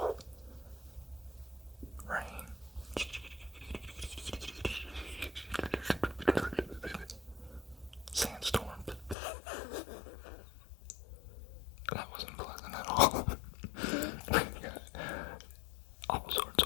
Rain. Sandstorms. That wasn't pleasant at all. All sorts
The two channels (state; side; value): drops out; right; at 9.2 s